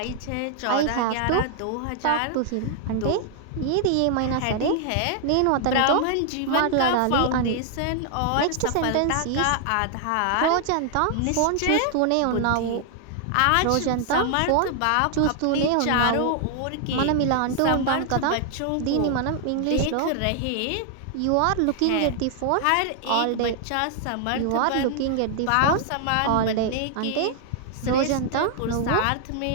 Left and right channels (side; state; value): both; different; correlation 0.00